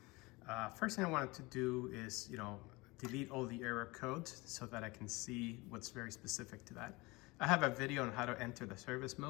First thing I wanted to do is, delete all the error codes so that I can see what's very specific to that. I have a video on how to enter the service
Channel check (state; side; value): quieter; right; 23.5 dB